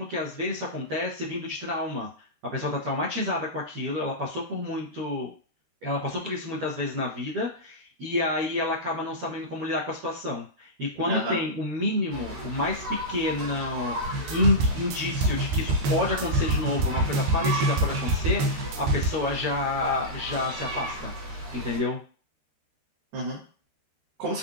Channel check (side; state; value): left; late; 13 ms